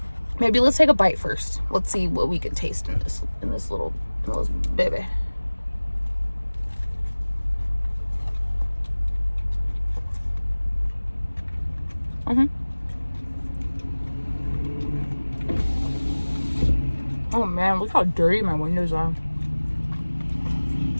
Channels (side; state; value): both; inverted; correlation -1.00